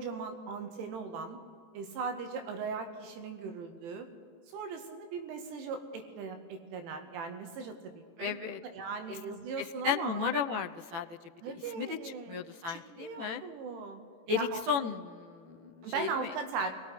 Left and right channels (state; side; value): late; left; 18 ms